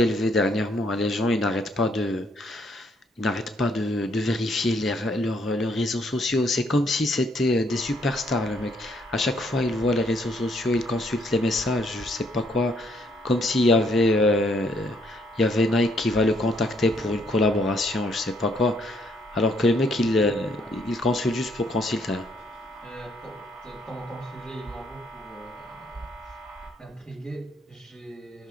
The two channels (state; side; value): normal; both; correlation 0.69